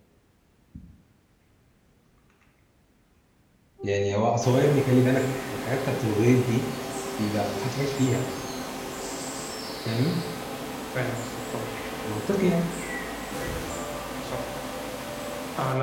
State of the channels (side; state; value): both; identical; correlation 1.00